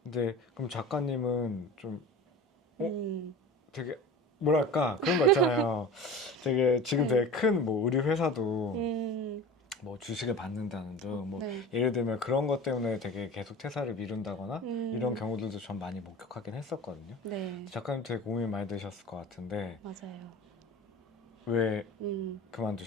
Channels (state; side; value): normal; both; correlation 0.35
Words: 근데 그럼 작가님은 좀 음, 되게 뭐랄까 그런 거 있잖아요. 되게 지금 네. 되게 큰 뭐 의류 회사도 음, 뭐 주식을 받는다는 등 뭐 네. 예를 들면 그런 것 때문에 되게 계속 퇴사를 미룬다거나 이런 음, 경우들도 전 많이 목격하긴 했었거든요. 네. 작가님 되게 고민 많이 되셨을 것 같은데 맞아요. 왜 음,